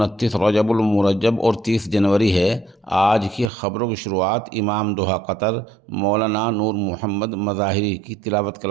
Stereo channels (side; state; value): left; drops out; at 3.5 s